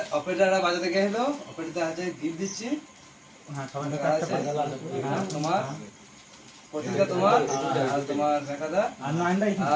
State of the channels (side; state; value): both; identical; correlation 1.00